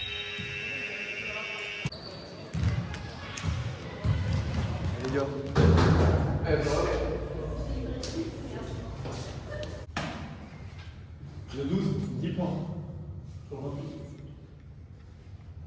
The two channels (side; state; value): both; identical; correlation 1.00